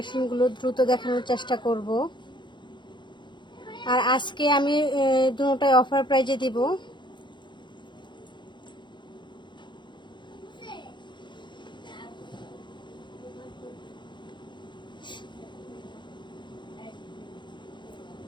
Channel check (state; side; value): late; right; 0.22 ms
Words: দ্রুত দেখানোর চেষ্টা করব। আর আজকে আমি দুটোটাই অফার প্রাইজে দিব।